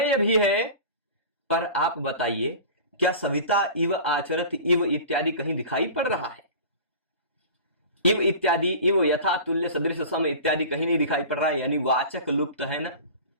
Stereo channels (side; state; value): both; inverted; correlation -0.37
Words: भी है। पर आप बताइए, क्या सविता इव आचरत इव इत्यादि कहीं दिखाई पड़ रहा है? इव इत्यादि, इव यथा तुल्य सदृश सम इत्यादि कहीं नहीं दिखाई पड़ रहा है, यानी वाचक लुप्त है ना।